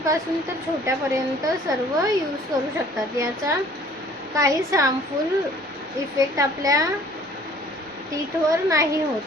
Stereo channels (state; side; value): normal; both; correlation 0.54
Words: तर छोट्यापर्यंत सर्व यूज करू शकतात। याचा काहीच हार्मफुल इफेक्ट आपल्या टीथवर नाही होत।